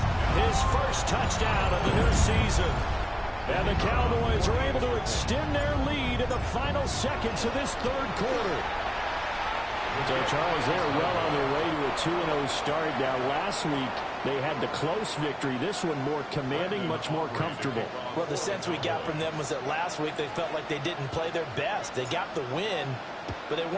his first touchdown of the new season. And the Cowboys are able to extend their lead in the final seconds of this 3rd quarter. So, Charles, they're well on their way to a 2-0 start. Now, last week, they had the close victory. This one more commanding, much more comfortable. Well, the sense we got from them was that last week they felt like they didn't play their best. They got the win, but they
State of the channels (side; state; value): both; identical; correlation 1.00